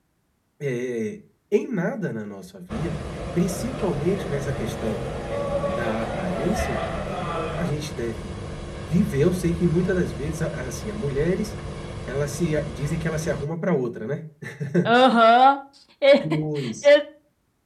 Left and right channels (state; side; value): identical; both; correlation 1.00